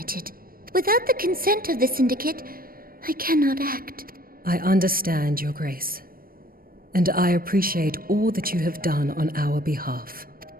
Without the consent of the Syndicate, I cannot act. I understand, Your Grace. And I appreciate all that you have done on our behalf.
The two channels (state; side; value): late; left; 0.42 ms